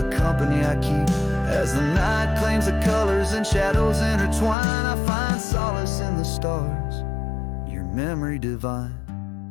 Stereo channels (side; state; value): right; drops out; at 4.5 s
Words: company I keep. As the night claims the colors and shadows intertwine, I find solace in the stars, your memory divine.